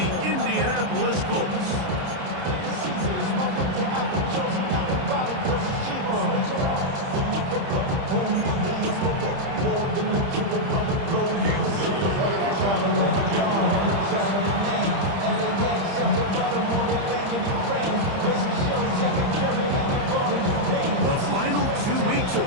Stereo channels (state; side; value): late; left; 30 ms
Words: Indianapolis Colts. The final 2 weeks of